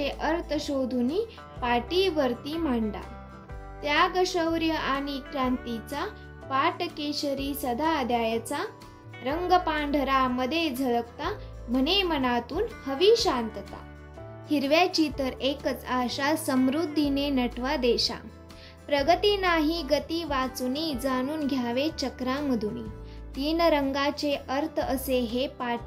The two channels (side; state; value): both; identical; correlation 1.00